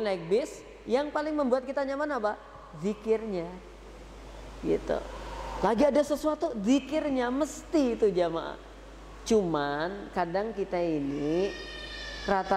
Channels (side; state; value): both; identical; correlation 1.00